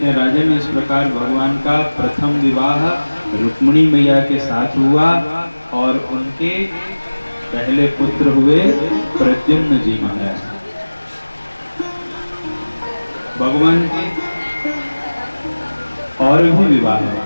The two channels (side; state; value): both; inverted; correlation -1.00